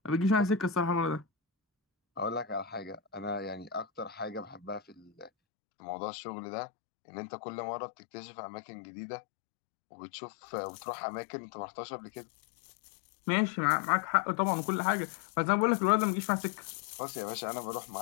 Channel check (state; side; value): drops out; right; at 5.3 s